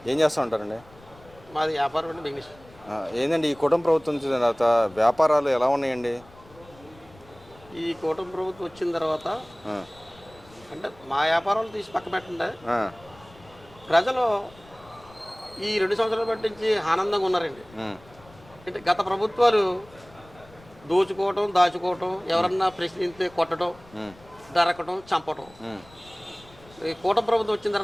ఏం చేస్తూ ఉంటారండి? మాది వ్యాపారం అండి, బిజినెస్. ఏందండి ఈ కుటుంబ ప్రభుత్వం వచ్చిన తర్వాత వ్యాపారాలు ఎలా ఉన్నాయండి? ఈ కూటమి ప్రభుత్వం వచ్చిన తర్వాత ఆ, అంటే మా వ్యాపారాలు తీసి పక్క పెట్టండి, ఆ, ప్రజలు ఈ 2 సంవత్సరాల బట్టి నుంచి ఆనందంగా ఉన్నారండి. ఉమ్, అంటే గత ప్రభుత్వాలు దోచుకోవటం, దాచుకోవటం, ఎవరన్నా ప్రశ్నిస్తే కొట్టడం, ఉమ్, దరకటం, చంపటం. ఉమ్, ఈ కూటమి ప్రభుత్వం వచ్చిన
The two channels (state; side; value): noise; left; rumble, 24 dB below the sound